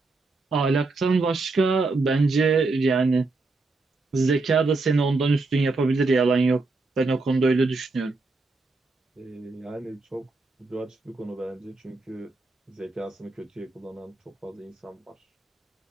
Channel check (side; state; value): left; quieter; 3.6 dB